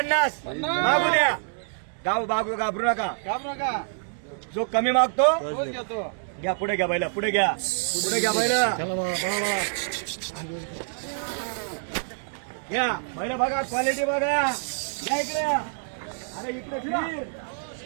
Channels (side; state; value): left; silent; digital silence